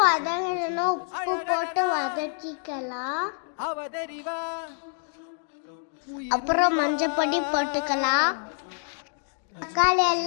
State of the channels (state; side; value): silent; right; 56 dB below the other